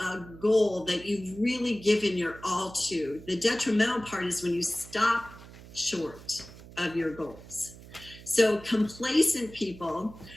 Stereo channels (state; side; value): noise; right; hum, 18 dB below the sound